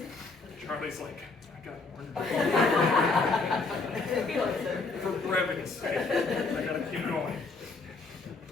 Charlie's like, I got ornery. For brevity's sake, I gotta keep going.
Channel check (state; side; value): quieter; right; 3.9 dB